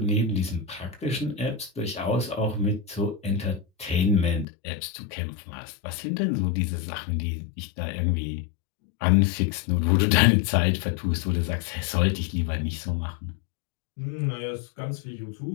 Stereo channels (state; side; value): drops out; right; at 4.5 s